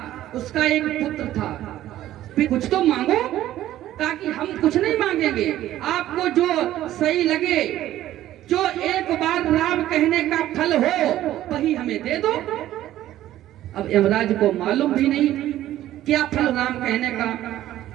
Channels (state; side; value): quieter; left; 13.5 dB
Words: उसका एक पुत्र था। कुछ तो मांगो, ताकि हम कुछ नहीं मांगेंगे, आपको जो सही लगे, जो एक बार राम कहने का फल हो वही हमें दे दो। अब यमराज को मालूम भी नहीं क्या फल राम कहने का।